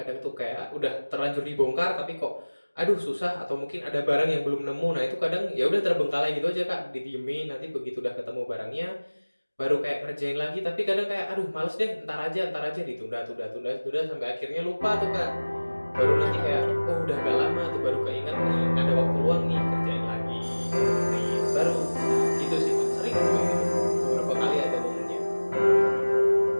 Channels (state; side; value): inverted; both; correlation -1.00